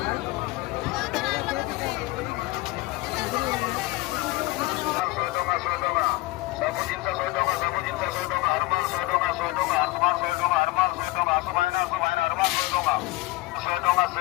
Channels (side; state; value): right; quieter; 20.0 dB